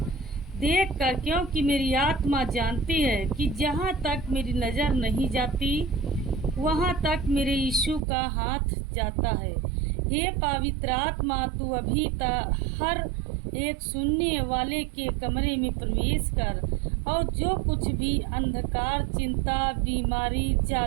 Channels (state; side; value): drops out; left; at 8.0 s